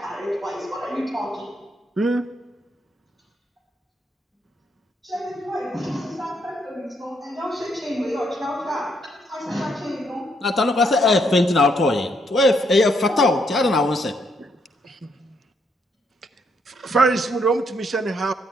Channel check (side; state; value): both; normal; correlation 0.74